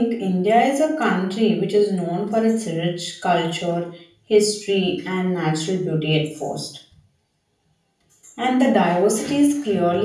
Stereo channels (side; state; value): both; identical; correlation 1.00